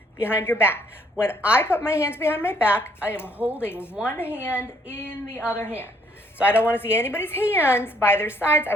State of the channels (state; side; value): normal; both; correlation 0.66